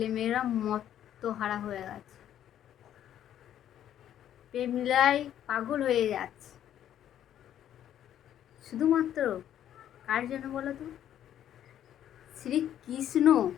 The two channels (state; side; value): quieter; right; 10.8 dB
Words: মত্তহারা হয়ে গেছে, প্রেম লীলায় পাগল হয়ে যাচ্ছে। শুধুমাত্র কার জন্য বলো তো? শ্রীকৃষ্ণ